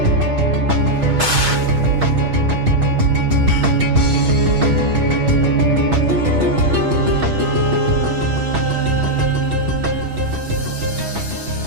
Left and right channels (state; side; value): late; left; 6.3 ms